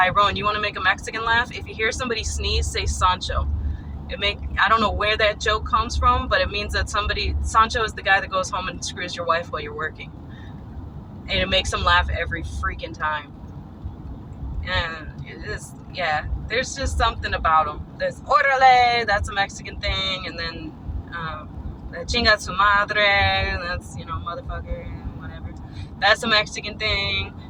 You want to make a Mexican laugh? If you hear somebody sneeze, say Sancho. I don't know where that joke comes from, but it means that Sancho is the guy that goes home and screws your wife while you're working. And it makes them laugh every freaking time. And it is, yeah, there's just something about them. There's Orale, that's a Mexican thing, and then Chinga su madre, that's, motherfucker, whatever. That's a Mexican thing.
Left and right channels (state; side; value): identical; both; correlation 1.00